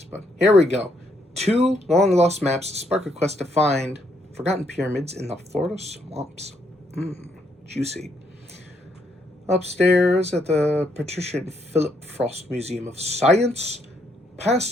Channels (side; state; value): both; normal; correlation 0.73